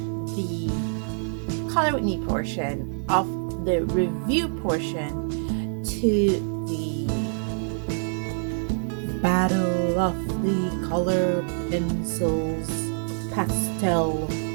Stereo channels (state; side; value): silent; left; digital silence